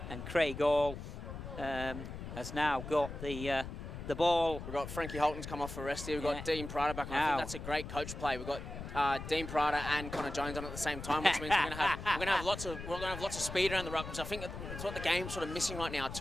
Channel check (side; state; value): left; noise; rumble, 9 dB below the sound